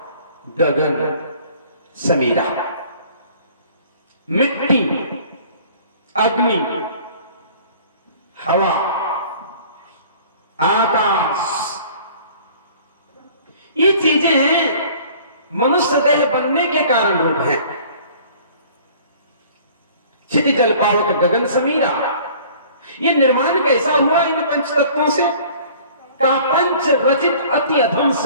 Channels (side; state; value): both; inverted; correlation -0.50